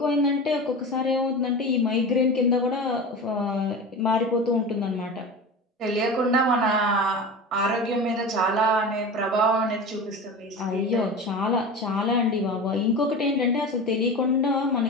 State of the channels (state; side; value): normal; both; correlation 0.30